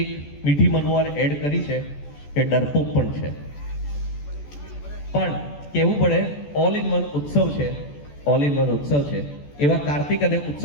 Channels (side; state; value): right; late; 14 ms